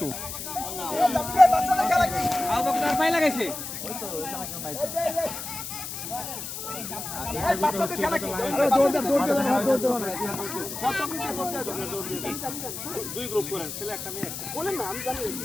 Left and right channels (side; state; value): left; noise; hiss, 7 dB below the sound